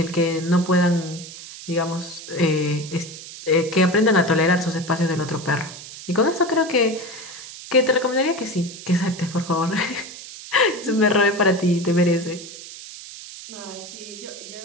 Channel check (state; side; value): noise; right; hiss, 14 dB below the sound